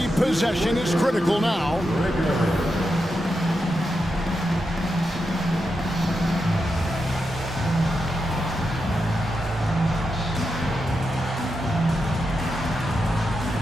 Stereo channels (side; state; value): both; normal; correlation 0.87